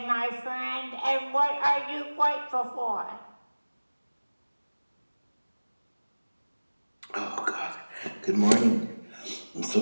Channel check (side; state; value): both; inverted; correlation -1.00